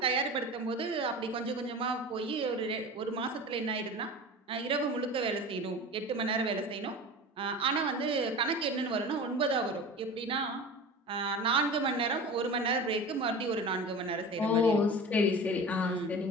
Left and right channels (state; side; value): normal; both; correlation 0.33